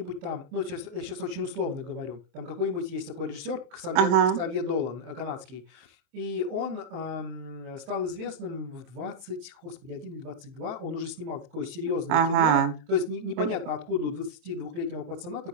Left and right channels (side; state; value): left; late; 26 ms